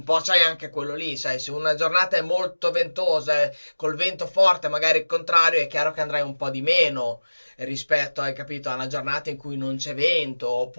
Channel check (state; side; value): inverted; both; correlation -1.00